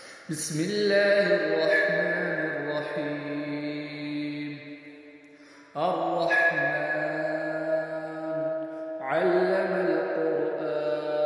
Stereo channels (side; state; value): both; identical; correlation 1.00